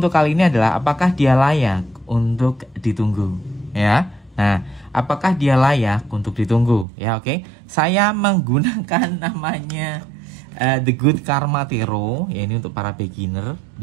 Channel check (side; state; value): left; drops out; at 6.9 s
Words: kali ini adalah apakah dia layak untuk ditunggu, ya. Nah, apakah dia layak untuk ditunggu, ya? Oke. Saya menggunakan namanya The Good Karma Tarot, ya, ini untuk para beginner.